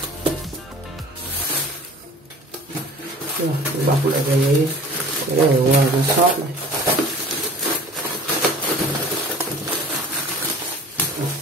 Rồi, bọc lại cái này ở ngoài cái shop này.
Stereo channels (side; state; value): both; normal; correlation 0.45